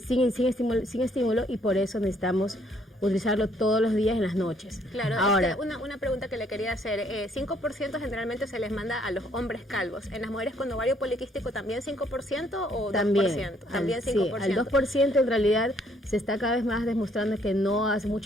sin estímulo, y por eso necesitamos utilizarlo todos los días en las noches. Claro, ahora una pregunta que le quería hacer. 5% generalmente se les manda a los hombres calvos. ¿En las mujeres con ovario poliquístico también 5% o 2%? También 5%. Sí, al 2% en realidad se está cada vez más demostrando que no hace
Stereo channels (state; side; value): normal; both; correlation 0.66